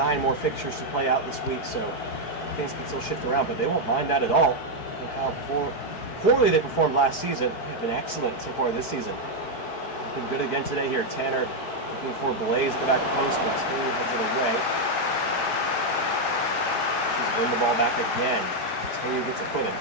more fixtures to play out this week, so things can still shift around, but they won't mind that at all. And how poorly they performed last season. They have been excellent so far this season. Been good again today here. Tanner looking for Blaze at the back post, but Taylor heads it away. Win the ball back again. Taylor gets a foot in.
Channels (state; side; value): late; right; 4.6 ms